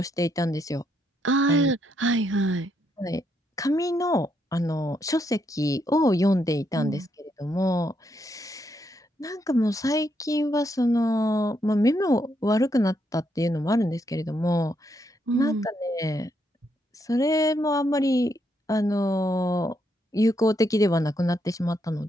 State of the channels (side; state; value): both; normal; correlation 0.77